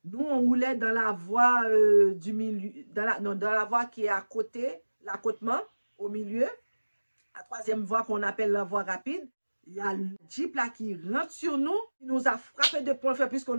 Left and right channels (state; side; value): inverted; both; correlation -1.00